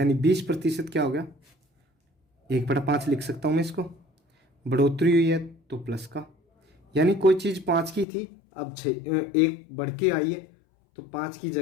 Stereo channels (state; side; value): drops out; right; at 8.1 s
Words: 20% क्या हो गया 1/5 लिख सकता हूँ मैं इसको। बढ़ोतरी हुई है तो प्लस का, यानी कोई चीज़ 5 की थी अब 6 1 बढ़ के आई है तो 5 की